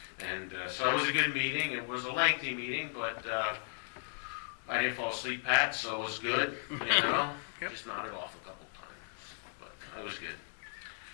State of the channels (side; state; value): right; silent; 54 dB below the other